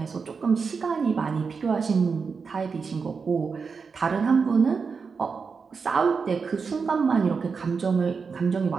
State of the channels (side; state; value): left; quieter; 5.3 dB